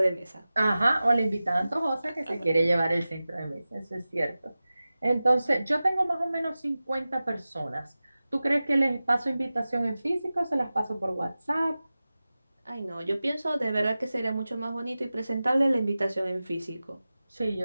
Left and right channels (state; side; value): inverted; both; correlation -0.96